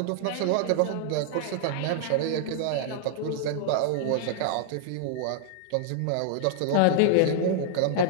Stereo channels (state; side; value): different; both; correlation -0.01